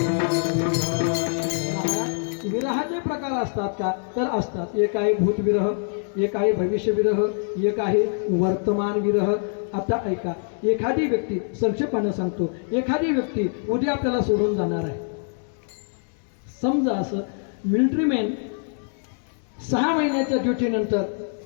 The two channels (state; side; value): silent; right; 62 dB below the other